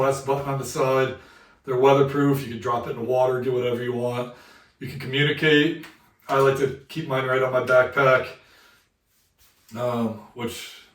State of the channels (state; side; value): identical; both; correlation 1.00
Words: button on the side. They're weatherproof, you can drop it in the water, do whatever you want. You can communicate. I like to keep mine right on my backpack, which